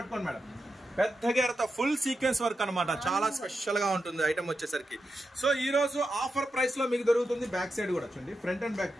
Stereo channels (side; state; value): both; normal; correlation 0.88